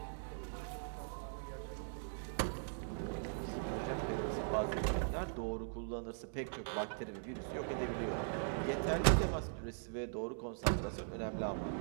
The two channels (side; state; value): left; silent; digital silence